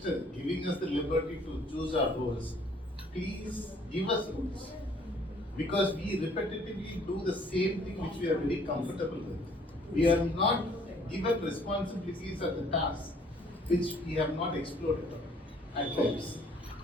giving us the liberty to choose our roles, please give us rules. Because we repetitively do the same thing which we are very comfortable with. We are not given responsibilities at the task which we have not explored at times.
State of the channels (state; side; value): normal; both; correlation 0.59